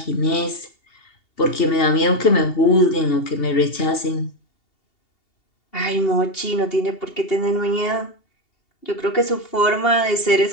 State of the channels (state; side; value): late; right; 2.7 ms